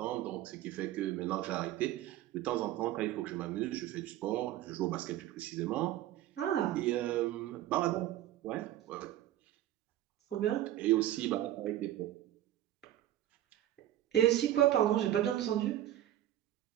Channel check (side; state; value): left; quieter; 13.2 dB